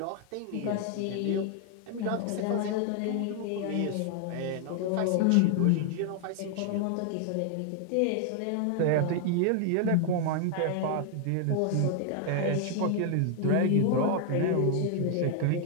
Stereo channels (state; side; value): different; both; correlation 0.00